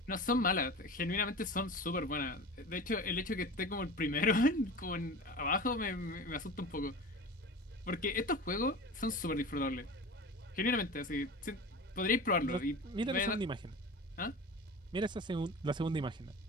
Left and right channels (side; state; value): both; normal; correlation 0.33